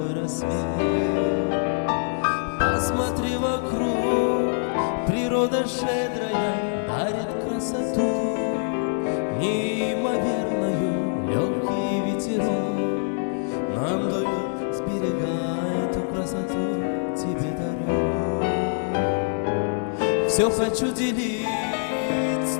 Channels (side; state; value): right; silent; digital silence